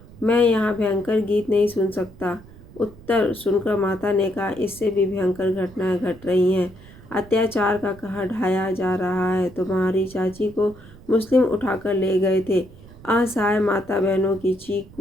मैं यहाँ भयंकर गीत नहीं सुन सकता। उत्तर सुनकर माता ने कहा, इससे भी भयंकर घटनाएं घट रही हैं। अत्याचार का कहर ढाया जा रहा है। तुम्हारी चाची को मुस्लिम उठाकर ले गए थे। असहाय माता बहनों की चीख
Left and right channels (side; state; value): right; noise; rumble, 21 dB below the sound